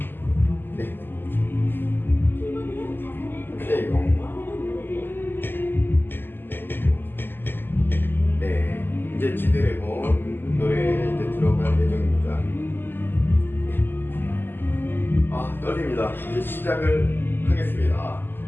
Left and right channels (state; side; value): late; right; 0.096 ms